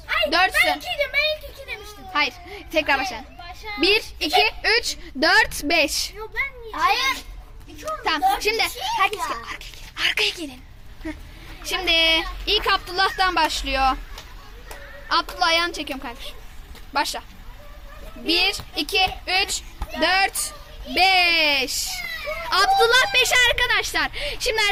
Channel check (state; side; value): identical; both; correlation 1.00